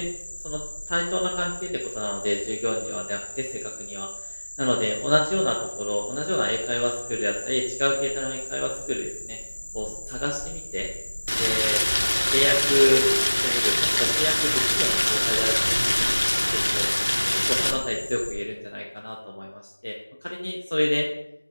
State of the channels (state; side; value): inverted; both; correlation -1.00